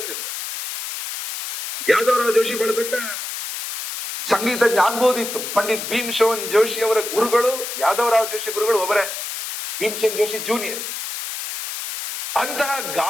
ಯಾದವ್ ರಾವ್ ಜೋಶಿ ಬಹಳ ದೊಡ್ಡ ಸಂಗೀತಜ್ಞ ಆಗ್ಬೋದಿತ್ತು. ಪಂಡಿತ್ ಭೀಮಸೇನ್ ಜೋಶಿ ಅವರ ಗುರುಗಳು ಯಾದವ್ ರಾವ್ ಜೋಶಿ ಗುರುಗಳು ಒಬ್ಬರೇ, ಭೀಮಸೇನ್ ಜೋಶಿ ಜೂನಿಯರ್. ಅಂತಹ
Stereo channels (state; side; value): noise; left; hiss, 6 dB below the sound